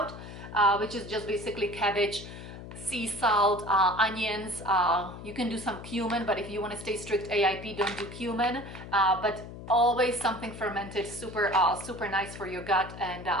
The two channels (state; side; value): noise; left; hum, 12 dB below the sound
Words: which is just basically cabbage, sea salt, onions. You can do some cumin, but if you want to stay strict AIP, don't do cumin. But always something fermented, super nice for your gut, and